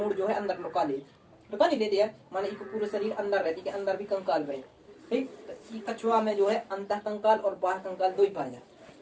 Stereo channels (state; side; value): identical; both; correlation 1.00